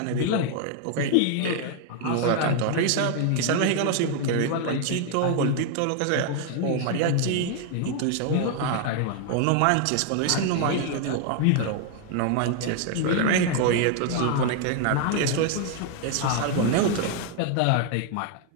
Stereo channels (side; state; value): both; different; correlation 0.00